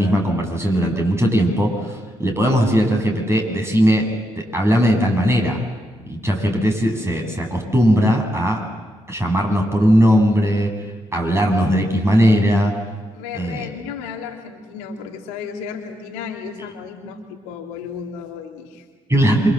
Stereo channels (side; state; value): both; normal; correlation 0.82